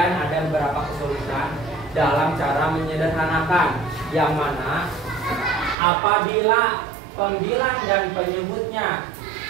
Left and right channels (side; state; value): left; drops out; at 5.8 s